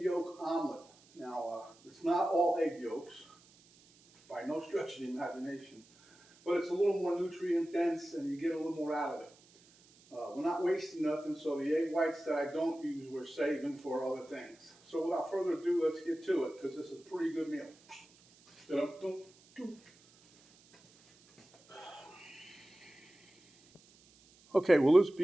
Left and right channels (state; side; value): noise; right; hiss, 27 dB below the sound